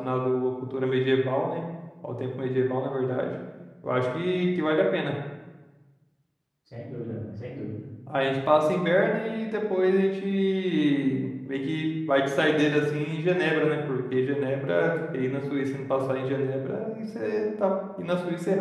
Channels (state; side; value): identical; both; correlation 1.00